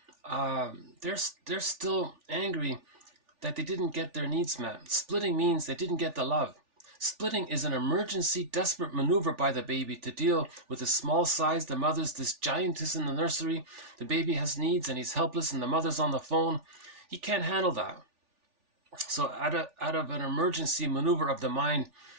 they're still angry that they didn't get their needs met. Splitting means they didn't get the love. Splitting is an emergency, desperate maneuver by the baby to deal with the small size. The mother's this giantess in the nursery. The baby has needs and he's helpless and the mother's on the phone. He can't handle that. So out of an emergency maneuver of the mind,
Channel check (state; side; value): late; left; 3.4 ms